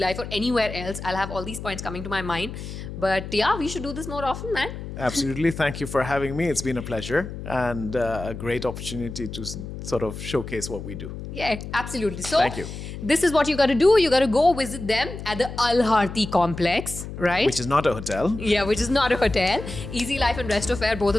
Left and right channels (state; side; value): noise; left; hum, 9 dB below the sound